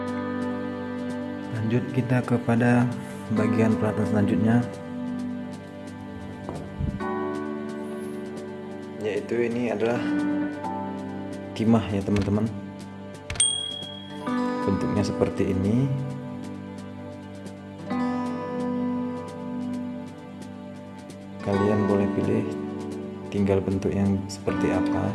Lanjut kita kepada bagian peralatan selanjutnya, yaitu ini adalah timah ya teman-teman. Bentuknya seperti ini. Kalian boleh pilih tinggal bentuk yang seperti apa.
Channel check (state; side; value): identical; both; correlation 1.00